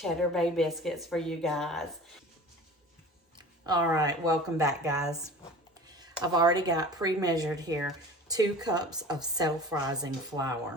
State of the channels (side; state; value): both; normal; correlation 0.40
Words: Bay biscuits for you guys. All right, welcome back, guys. I've already got pre-measured here 2 cups of self-rising